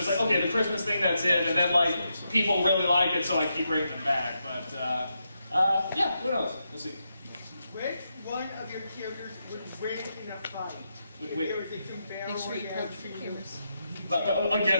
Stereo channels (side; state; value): both; inverted; correlation -0.84